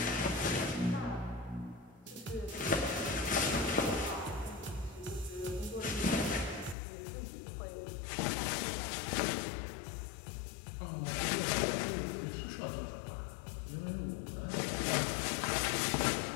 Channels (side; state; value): right; drops out; at 6.8 s